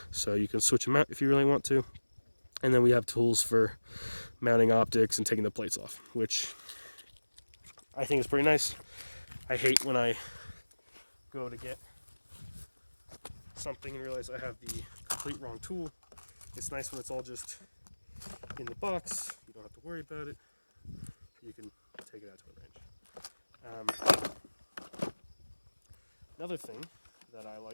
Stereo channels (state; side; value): inverted; both; correlation -1.00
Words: so you can switch them out if you really want to. And then we have tools for mounting optics and taking the plates off, which I think is pretty nice. I hate when I go to get something and realize I have the complete wrong tool. It's nice when it's all just in the box. You don't have to worry about it. You can take it out to a range. Another thing that I